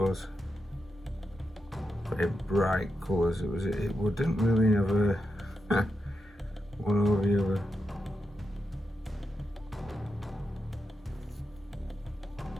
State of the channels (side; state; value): both; normal; correlation 0.86